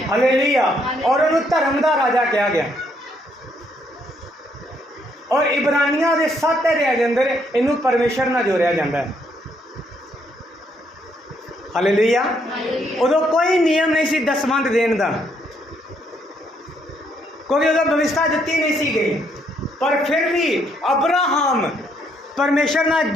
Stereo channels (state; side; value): normal; both; correlation 0.71